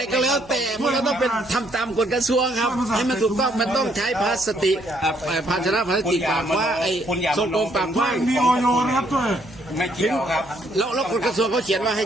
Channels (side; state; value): right; noise; hum, 24 dB below the sound